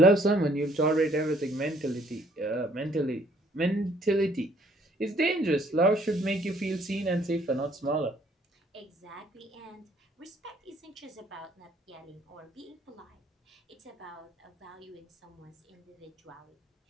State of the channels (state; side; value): normal; both; correlation 0.63